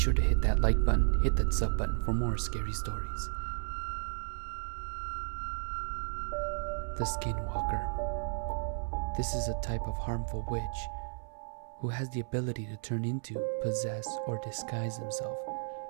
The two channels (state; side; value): silent; left; 55 dB below the other